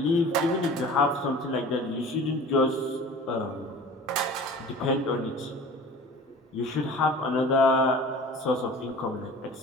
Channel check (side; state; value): both; normal; correlation 0.42